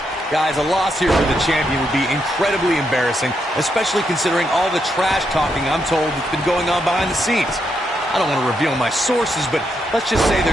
Guys, a loss here for the champion would be incredibly embarrassing, especially considering all the trash talking I'm told that's been going on behind the scenes. I don't want to reveal my sources, but let's just say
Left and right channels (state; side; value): normal; both; correlation 0.80